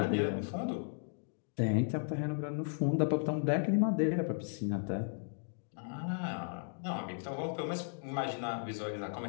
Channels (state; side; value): silent; right; digital silence